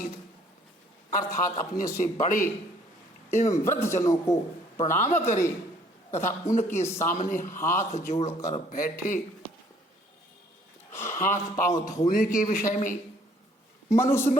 अर्थात अपने से बड़े एवं वृद्ध जनों को प्रणाम करे तथा उनके सामने हाथ जोड़कर बैठे। हाथ पांव धोने के विषय में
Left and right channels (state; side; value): normal; both; correlation 0.61